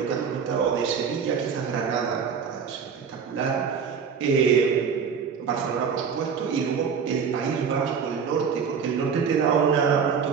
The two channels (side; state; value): left; quieter; 6.4 dB